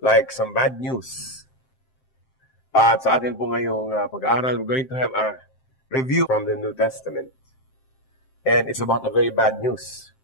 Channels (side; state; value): right; late; 7.6 ms